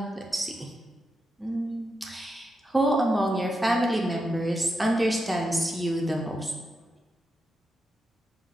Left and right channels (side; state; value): both; normal; correlation 0.86